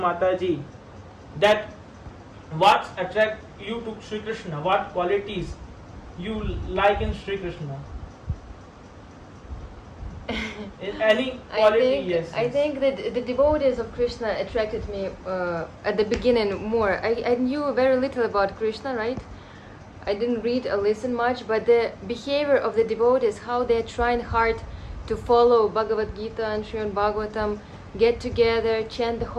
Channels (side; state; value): both; identical; correlation 1.00